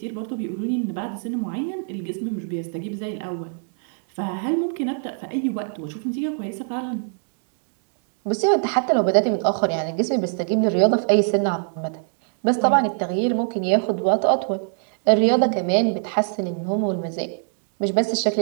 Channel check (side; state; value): left; silent; 63 dB below the other